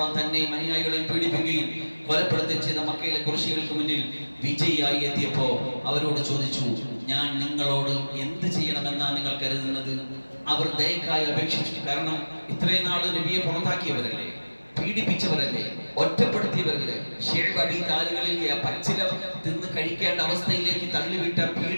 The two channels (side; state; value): both; inverted; correlation -1.00